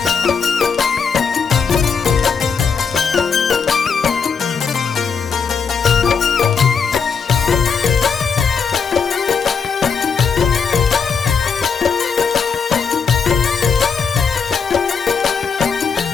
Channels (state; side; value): quieter; right; 6.0 dB